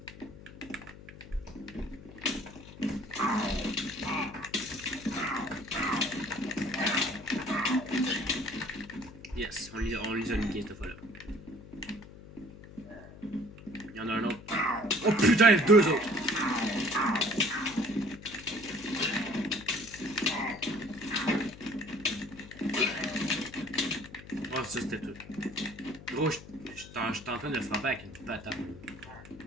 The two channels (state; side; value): noise; left; hum, 17 dB below the sound